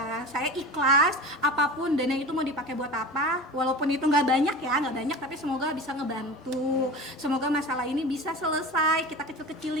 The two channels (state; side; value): normal; both; correlation 0.33